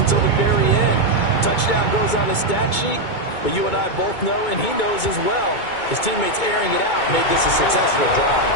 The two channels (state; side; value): late; right; 2.2 ms